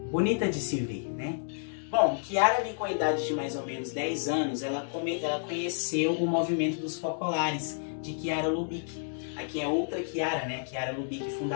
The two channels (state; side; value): silent; right; digital silence